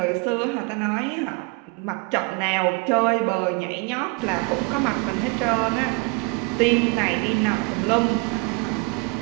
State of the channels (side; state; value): left; quieter; 28.2 dB